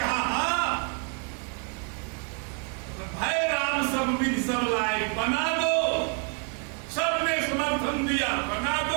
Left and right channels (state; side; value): quieter; left; 38.1 dB